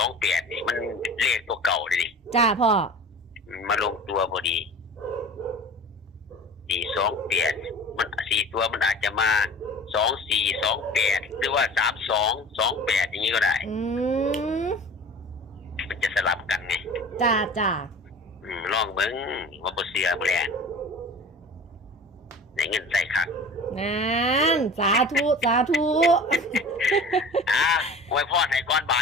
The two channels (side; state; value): both; normal; correlation 0.40